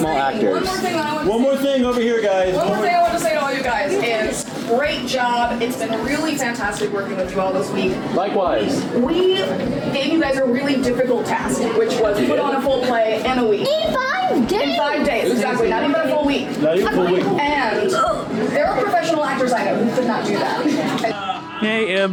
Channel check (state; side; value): identical; both; correlation 1.00